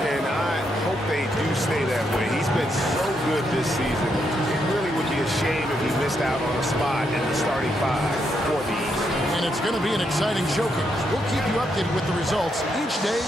I hope they do stay that way. He's been so good this season. It really would be a shame if he missed out on a spot in the starting 5 for the East. And it's going to be an exciting showcase. We'll keep you updated with the results each day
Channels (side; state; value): both; normal; correlation 0.79